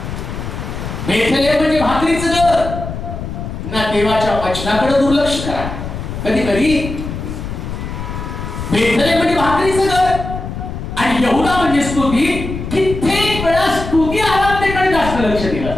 बेथेलहेम म्हणजे भाकरीचं घर ना, देवाच्या वचनाकडे दुर्लक्ष करा. कधी कधी बेथेलहेम म्हणजे भाकरीचं घर आणि यहुदा म्हणजे स्तुती. कित्येक वेळा स्तुती आराधनेकडे जास्त लक्ष दिलं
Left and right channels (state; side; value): noise; left; rumble, 7 dB below the sound